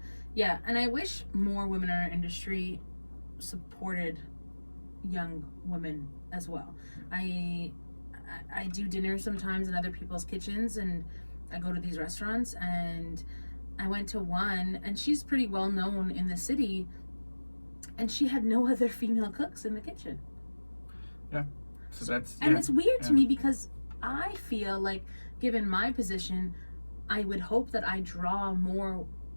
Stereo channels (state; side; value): inverted; both; correlation -1.00